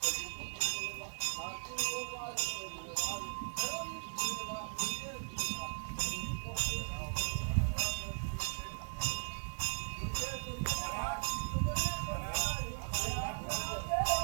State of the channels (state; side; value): silent; left; digital silence